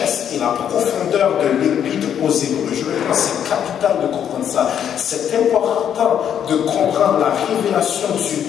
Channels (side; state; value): right; quieter; 9.1 dB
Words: et la profondeur de l'Épître aux Hébreux. Je pense que c'est capital de comprendre ça. C'est important de comprendre la révélation du